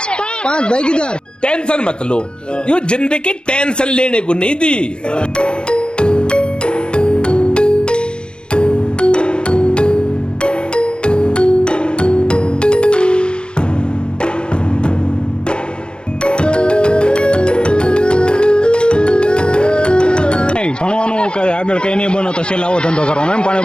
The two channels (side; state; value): right; late; 0.051 ms